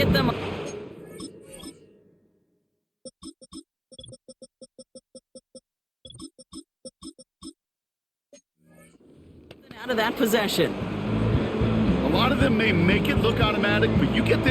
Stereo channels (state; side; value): identical; both; correlation 1.00